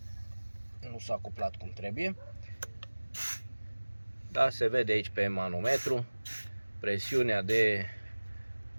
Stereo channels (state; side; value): inverted; both; correlation -1.00